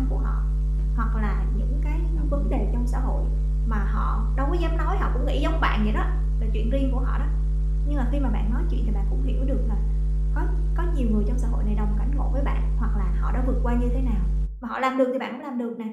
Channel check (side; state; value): both; identical; correlation 1.00